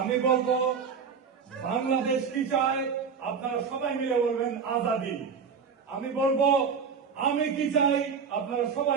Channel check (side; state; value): left; quieter; 6.1 dB